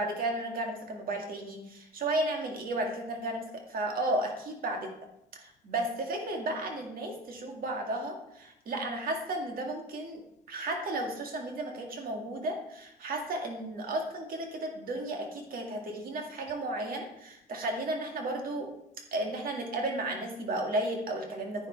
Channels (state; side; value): normal; both; correlation 0.30